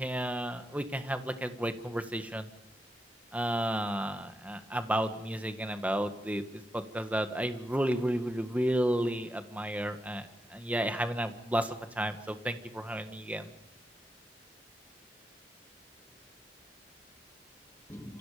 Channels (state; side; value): normal; both; correlation 0.85